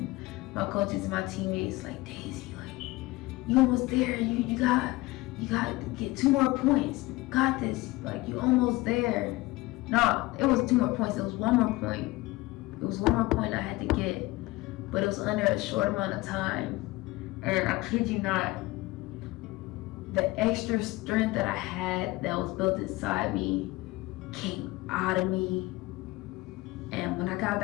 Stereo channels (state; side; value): quieter; right; 20.2 dB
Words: my coaches and my teammates like, Daisy, like, you almost there. You got to get 2 more points. You got this. Like, you almost there. No, it was 2 more points. It was 1 more point. It was 1 more point I had to get, but it was under a short amount of time. And I kid you not, the extra strength that I had that was built inside me came out of me. And when I got